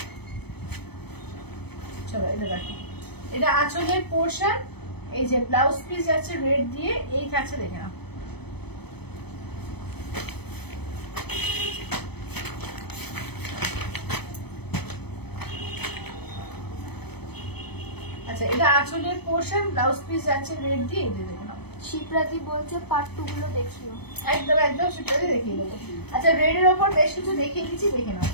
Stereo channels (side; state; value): right; late; 0.97 ms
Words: চলো এটা দেখো, এটা আঁচলের পোর্শন, এই যে ব্লাউজ পিস যাচ্ছে রেড দিয়ে, এই থাকছে দেখে নাও। আচ্ছা এটা আঁচলের পোর্শন, ব্লাউজ পিস যাচ্ছে রেড দিয়ে, এই যে দেখে নাও। শিপ্রাতি বলছে পার্ট 2 গুলো দেখিও। একদম একদম সেটাই দেখিয়ে দেবো। আচ্ছা রেডের ওপর বেশ কিছু দেখিয়ে দিচ্ছি, দেখে নাও,